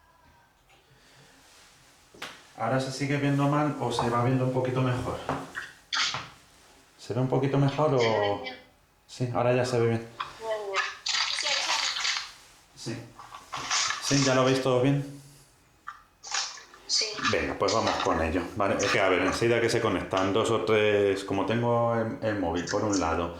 ¿Ahora se sigue viendo mal o se va viendo un poquito mejor? ¿Se ve un poquito mejor o...? Sí, ahora ya se ve bien. Sí. ¿Sí? ¿Ya lo veis todo bien? Sí. Venga, pues vamos con ello. Vale, es que a ver, enseguida que se conectan 2 o 3, como tengo el móvil por un lado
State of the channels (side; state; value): both; identical; correlation 1.00